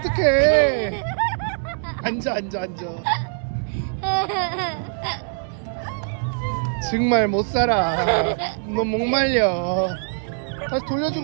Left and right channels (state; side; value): silent; left; digital silence